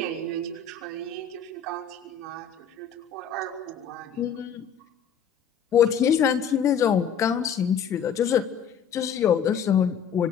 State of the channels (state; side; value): quieter; right; 7.1 dB